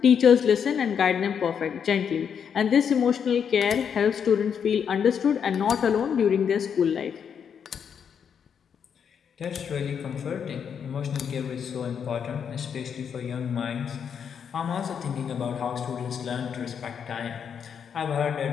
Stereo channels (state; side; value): quieter; right; 7.5 dB